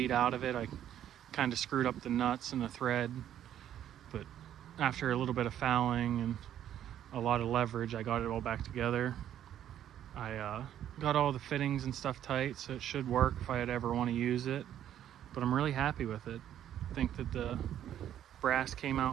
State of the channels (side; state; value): left; quieter; 10.9 dB